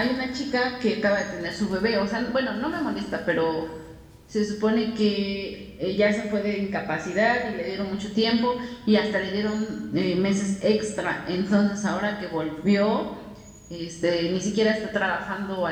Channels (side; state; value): both; identical; correlation 1.00